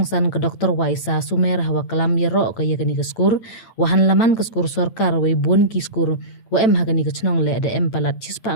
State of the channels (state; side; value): late; right; 8.9 ms